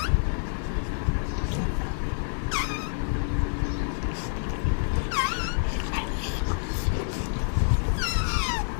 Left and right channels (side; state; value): right; silent; 60 dB below the other